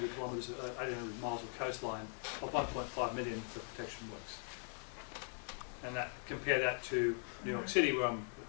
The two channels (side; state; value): right; silent; 50 dB below the other